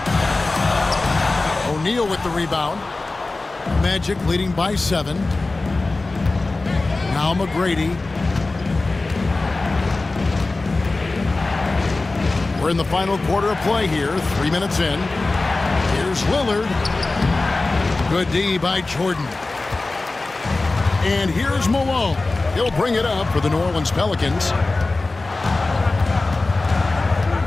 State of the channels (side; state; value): right; quieter; 3.3 dB